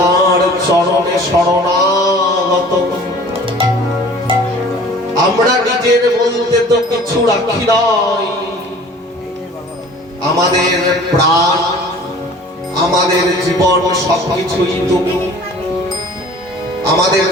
চরণে শরণাগত। আমরা নিজের বলতে তো কিছু রাখি নাই। আমাদের প্রাণ, আমাদের জীবন সবকিছুই তুমি। আমাদের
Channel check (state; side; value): normal; both; correlation 0.47